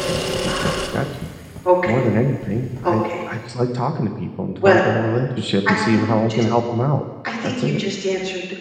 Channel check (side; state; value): both; identical; correlation 1.00